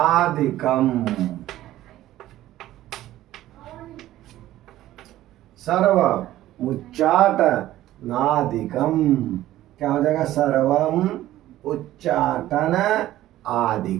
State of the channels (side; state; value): left; quieter; 14.4 dB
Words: सर्व मुच्चाट नादिकम। क्या हो जाएगा? सर्वम उच्चाटन